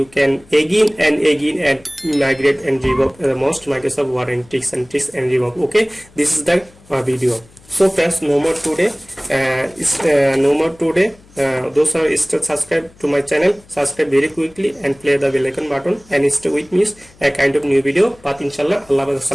can again and migrate and revoke the most Microsoft Word and text and revoke. Okay, this is the video. So friends, no more today. Those are still subscribe to my channel, subscribe very quickly and play the bell icon button and stay with me a kind of new video. But inshallah, Allah,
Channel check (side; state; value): left; noise; hum, 27 dB below the sound